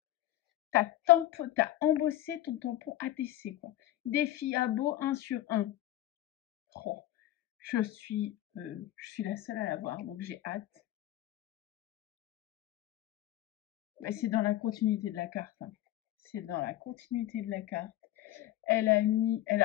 T'as embossé ton tampon ATC, quoi. Défi à beau 1 sur 1. Oh, je suis la seule à l'avoir, donc j'ai hâte. Mais c'est dans la continuité de la carte. Hein. C'est dans la continuité de la carte. Elle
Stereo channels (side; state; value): right; quieter; 14.4 dB